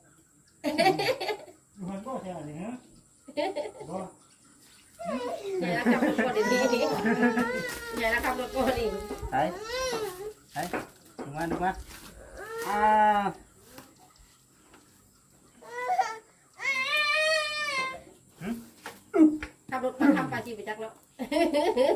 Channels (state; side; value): identical; both; correlation 1.00